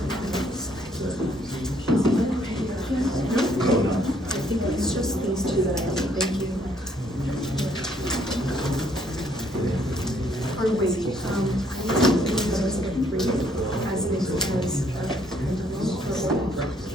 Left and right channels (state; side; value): normal; both; correlation 0.67